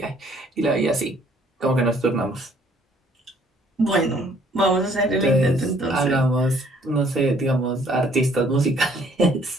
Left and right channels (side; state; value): both; normal; correlation 0.61